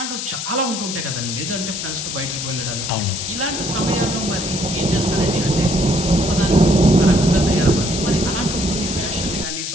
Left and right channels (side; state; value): left; noise; hiss, 5 dB below the sound